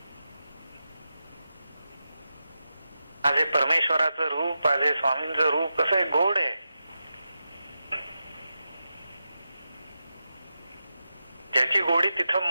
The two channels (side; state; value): both; inverted; correlation -0.90